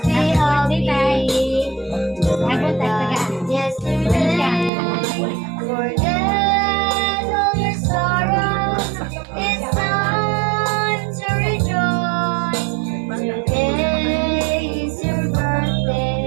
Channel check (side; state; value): left; drops out; at 4.7 s